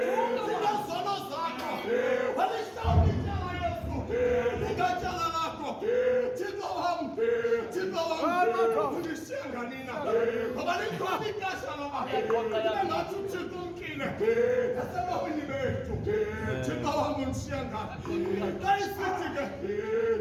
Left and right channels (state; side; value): identical; both; correlation 1.00